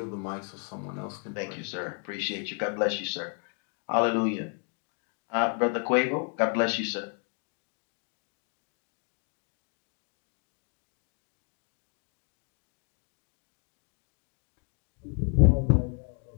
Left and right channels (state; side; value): quieter; right; 39.1 dB